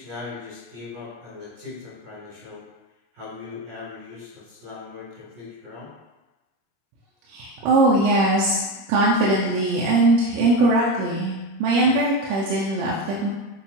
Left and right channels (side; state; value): left; late; 26 ms